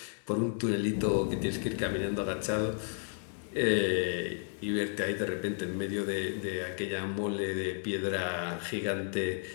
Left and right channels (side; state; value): right; silent; 55 dB below the other